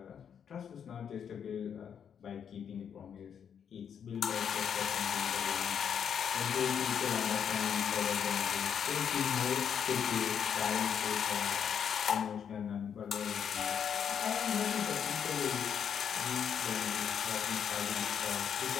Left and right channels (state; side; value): quieter; right; 7.9 dB